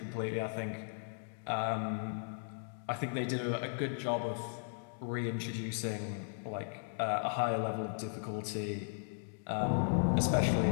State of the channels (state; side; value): silent; right; digital silence